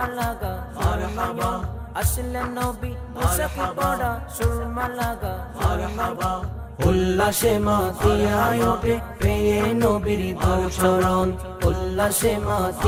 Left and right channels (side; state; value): both; identical; correlation 1.00